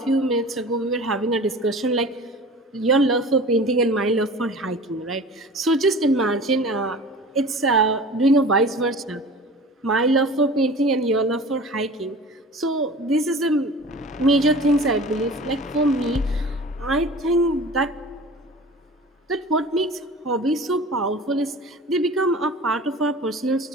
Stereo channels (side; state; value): both; normal; correlation 0.40